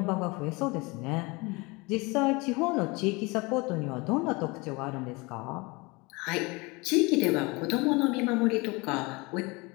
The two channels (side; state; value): right; quieter; 25.8 dB